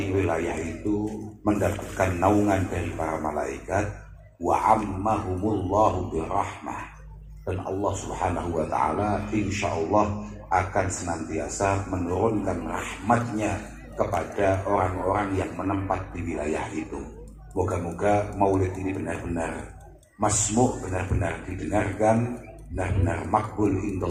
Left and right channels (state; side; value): identical; both; correlation 1.00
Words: wilayah itu mendapatkan naungan dari para malaikat, wa ammahumullahu birahmah, dan Allah Subhanahu Wa Taala insya Allah akan senantiasa menurunkan rahmatnya kepada orang-orang yang menempat di wilayah itu. Moga-moga maulid ini benar-benar masmu', benar-benar didengarkan, benar-benar makbul